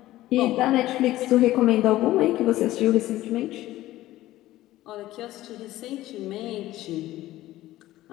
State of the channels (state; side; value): quieter; right; 15.6 dB